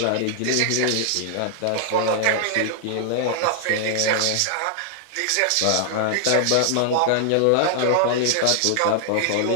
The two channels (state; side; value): different; both; correlation 0.00